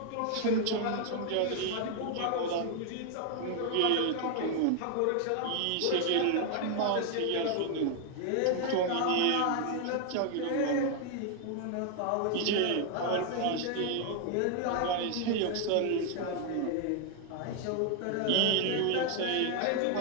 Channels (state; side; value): different; both; correlation 0.00